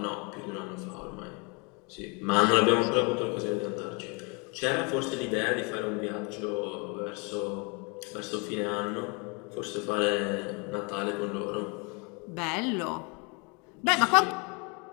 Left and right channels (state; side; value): quieter; right; 32.0 dB